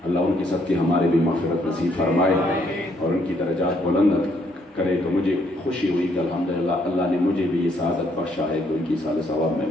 اللہ ان کی صدقے ہمارے بھی مغفرت نصیب فرمائے اور ان کی درجات بلند کرے. تو مجھے خوشی ہوئی کہ الحمدللہ اللہ نے مجھے بھی یہ سعادت بخشا ہے کہ ان کی سال ثواب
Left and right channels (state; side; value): normal; both; correlation 0.70